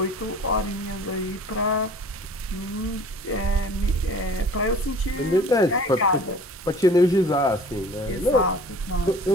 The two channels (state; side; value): normal; both; correlation 0.47